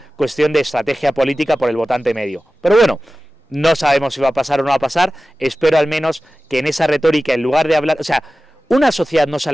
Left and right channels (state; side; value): normal; both; correlation 0.95